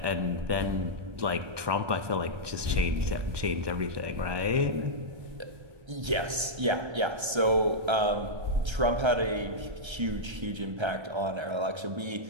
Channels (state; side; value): late; left; 1.3 ms